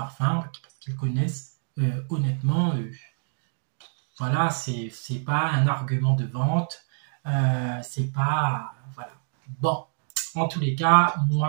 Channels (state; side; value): silent; left; digital silence